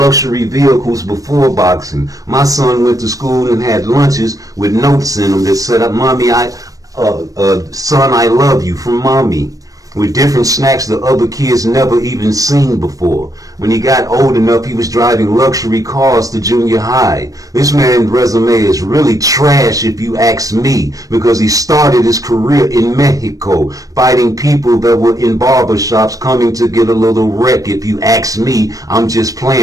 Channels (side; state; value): left; late; 0.17 ms